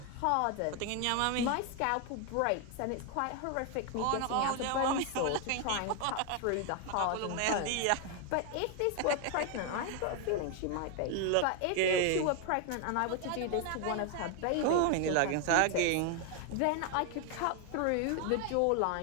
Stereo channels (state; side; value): different; both; correlation 0.01